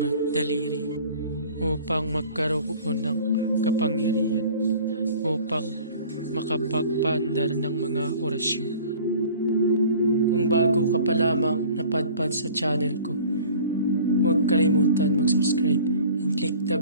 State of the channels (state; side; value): inverted; both; correlation -0.46